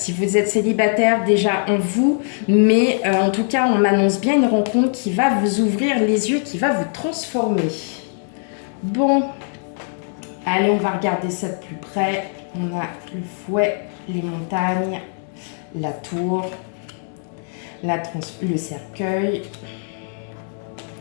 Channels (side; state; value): right; silent; 60 dB below the other